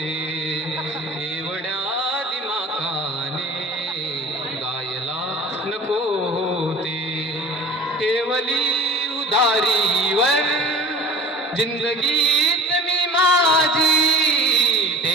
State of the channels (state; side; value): normal; both; correlation 0.42